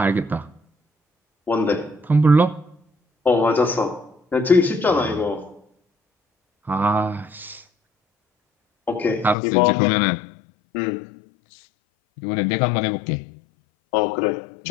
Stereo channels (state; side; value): drops out; right; at 9.3 s